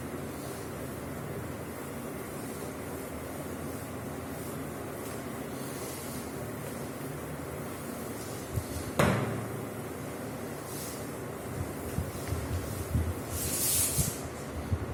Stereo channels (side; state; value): both; identical; correlation 1.00